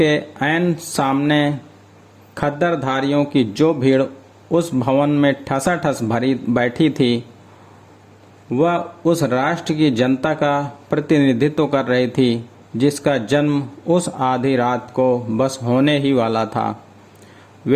ऐन सामने खद्दरधारियों की जो भीड़ उस भवन में ठसाठस भरी बैठी थी, वह उस राष्ट्र की जनता का प्रतिनिधित्व कर रही थी जिसका जन्म उस आधी रात को बस होने ही वाला था।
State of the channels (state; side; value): identical; both; correlation 1.00